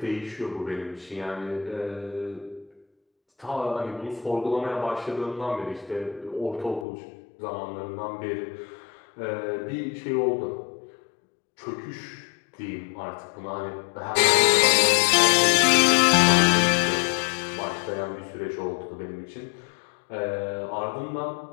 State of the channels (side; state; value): right; drops out; at 6.9 s